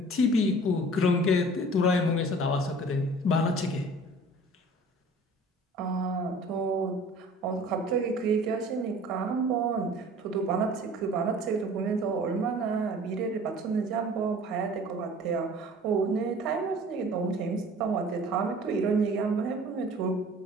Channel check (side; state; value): both; normal; correlation 0.47